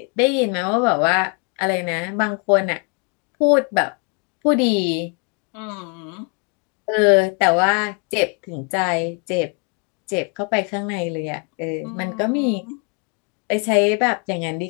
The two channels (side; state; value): right; quieter; 35.4 dB